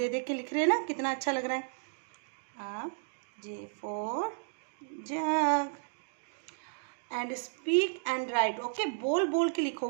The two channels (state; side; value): silent; left; digital silence